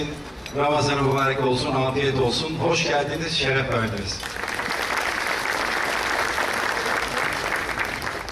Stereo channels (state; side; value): identical; both; correlation 1.00